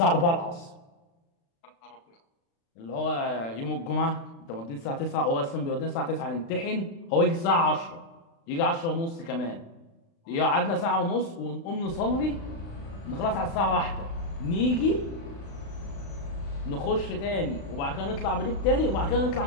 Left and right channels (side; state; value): right; late; 36 ms